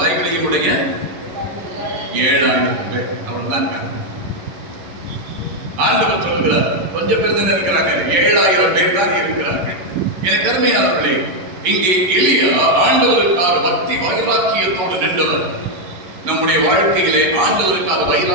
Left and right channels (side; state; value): left; late; 11 ms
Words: உடைய 7000 பேர் அவர்தான் ஆண்டவர் சொல்லுகிறார். கொஞ்சம் பேர் தானே இருக்கிறாங்க, 7000 பேர் தான் இருக்கிறார்கள். எனக்கு அருமையானவர்களே, இங்கே எலியா ஆண்டவருக்காக பக்தி வைராக்கியத்தோடு நின்றவர். நம்முடைய வாழ்க்கையிலே ஆண்டவருக்காக